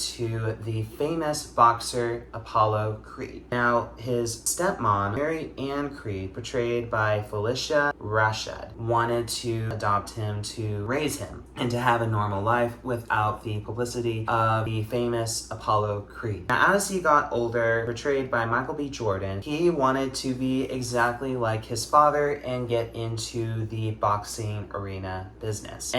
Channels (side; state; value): both; identical; correlation 1.00